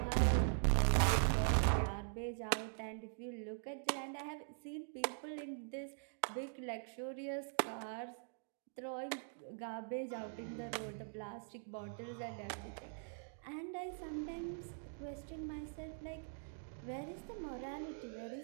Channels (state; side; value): silent; left; digital silence